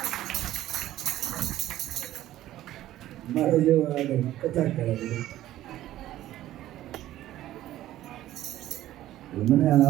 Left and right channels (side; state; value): left; quieter; 14.0 dB